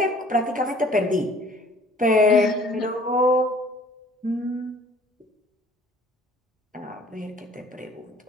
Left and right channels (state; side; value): normal; both; correlation 0.53